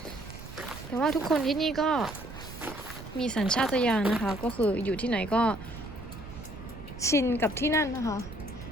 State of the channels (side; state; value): right; noise; rumble, 14 dB below the sound